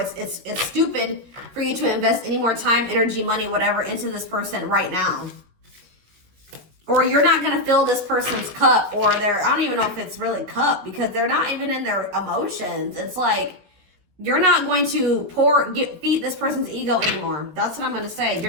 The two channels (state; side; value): late; left; 16 ms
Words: stupid for you to invest any more time, energy, money, whatever, into this person right now. Or you're not going to fill this person's cup, or I don't even know if it's really cup, because they're not even in their emotions. It's like, you're not going to feed this person's ego anymore. That's what I'm going to say.